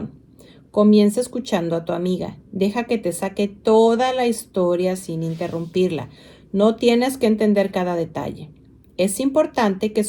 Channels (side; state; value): both; identical; correlation 1.00